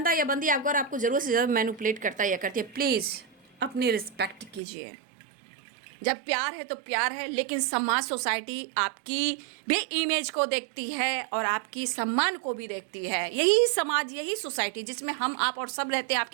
या बंदी अगर आपको ज़रूरत से ज़्यादा मैनिपुलेट करता है या करती है, प्लीज़ अपनी रिस्पेक्ट कीजिए। जब प्यार है तो प्यार है, लेकिन समाज, सोसाइटी आपकी भी इमेज को देखती है और आपकी सम्मान को भी देखती है। यही समाज, यही सोसाइटी जिसमें हम, आप और सब रहते हैं,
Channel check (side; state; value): left; drops out; at 4.6 s